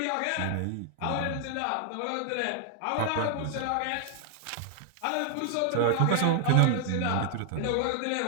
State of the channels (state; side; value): different; both; correlation 0.00